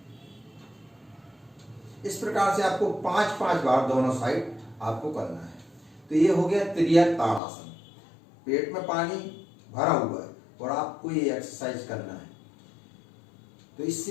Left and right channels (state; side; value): drops out; right; at 7.4 s